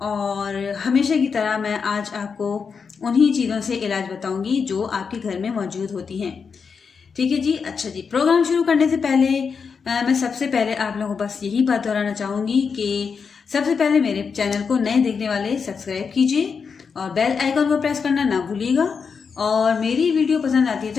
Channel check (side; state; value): right; quieter; 5.8 dB